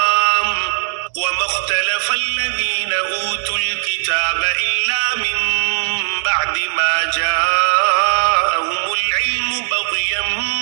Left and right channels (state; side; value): silent; left; digital silence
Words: وما اختلف الذین اوتوا الكتاب الا من بعد ما جاءهم العلم بغیا